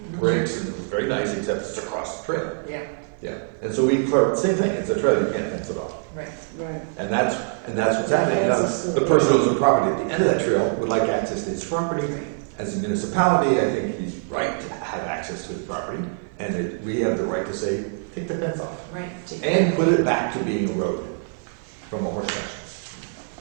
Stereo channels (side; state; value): left; silent; 55 dB below the other